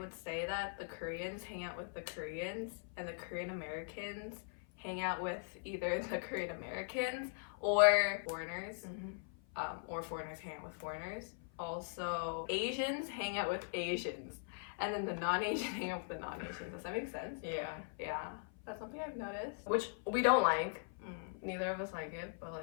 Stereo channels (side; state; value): right; silent; 51 dB below the other